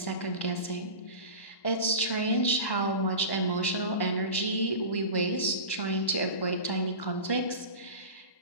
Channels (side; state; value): right; late; 1.1 ms